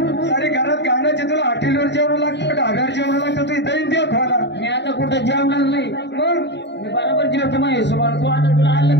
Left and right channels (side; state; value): right; late; 0.51 ms